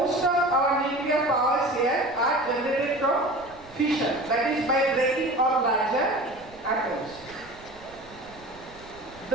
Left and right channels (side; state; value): right; noise; rumble, 24 dB below the sound